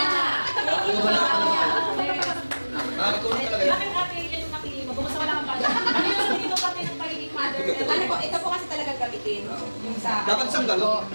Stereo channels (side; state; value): both; inverted; correlation -1.00